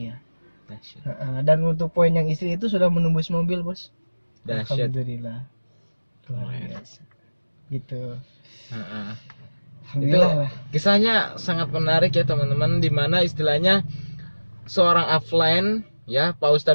Dan untuk poin yang istri itu sudah menembus mobil Bos. Alhamdulillah, luar biasa gitu. Alhamdulillah. Itu kisahnya sangat menarik ya teman-teman, dimana istilahnya seorang offline ya, Pak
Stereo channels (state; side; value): inverted; both; correlation -1.00